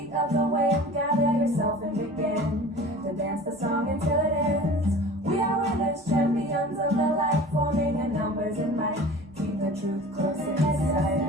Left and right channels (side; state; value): both; normal; correlation 0.41